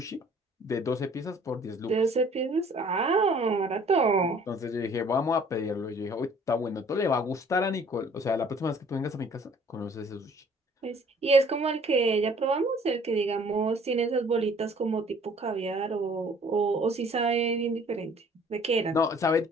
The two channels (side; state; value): both; normal; correlation 0.55